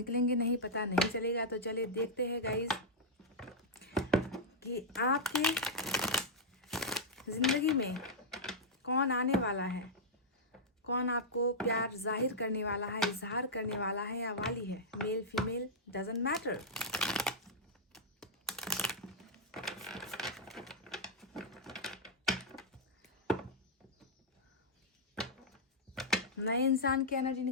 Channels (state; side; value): normal; both; correlation -0.06